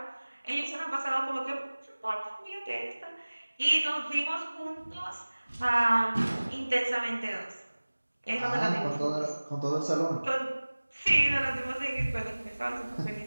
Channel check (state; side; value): inverted; both; correlation -1.00